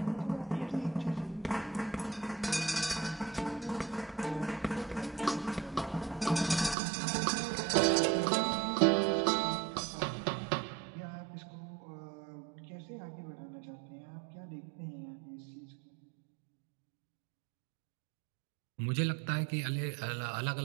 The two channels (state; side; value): drops out; left; at 6.8 s